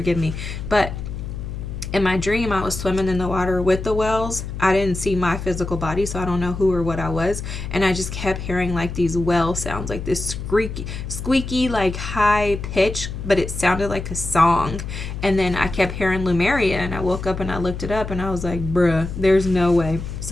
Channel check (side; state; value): left; noise; hum, 7 dB below the sound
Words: me. But in my dream, I was swimming in the water with the whales. I didn't see my physical body, so I don't know who or what I was. And I just kept hearing like these whale sounds, like this squeaky, like high pitch, but it sounded like a song. And then I kept hearing Lumeria, and I woke up and I looked it up, and I was like, bruh, there's no way.